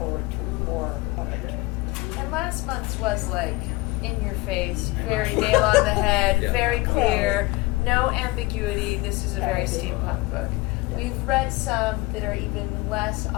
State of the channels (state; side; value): quieter; right; 22.1 dB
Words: to more of it. And last month's was like in your face, very nail on the head, Yeah. very clear, no ambiguity. This is a very steampunk book. We've read some that are even less